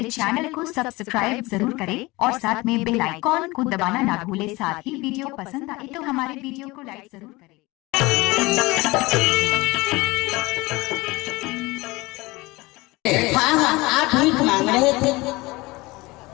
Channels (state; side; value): quieter; right; 22.2 dB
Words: चैनल को सब्सक्राइब जरूर करें और साथ में बेल आइकॉन को दबाना ना भूलें। साथ ही वीडियो पसंद आए तो हमारे वीडियो को लाइक जरूर करें। हाँ हाँ, आप भीख मांग रहे थे।